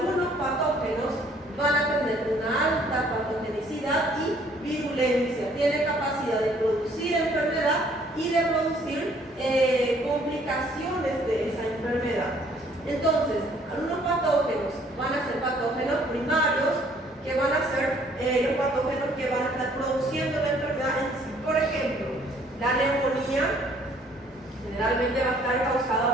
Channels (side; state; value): both; normal; correlation 0.61